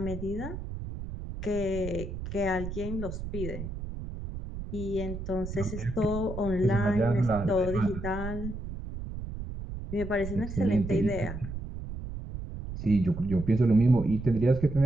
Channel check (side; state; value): right; noise; rumble, 8 dB below the sound